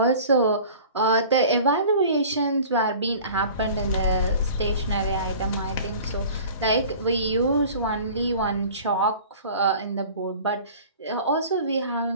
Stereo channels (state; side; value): inverted; both; correlation -0.44